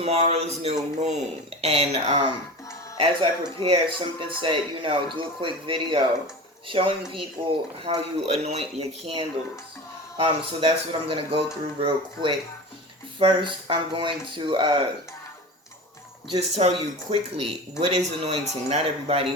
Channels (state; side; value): normal; both; correlation 0.32